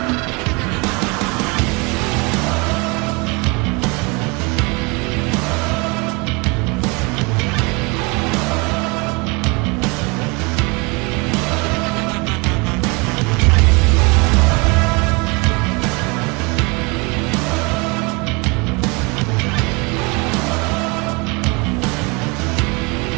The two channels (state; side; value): quieter; left; 28.4 dB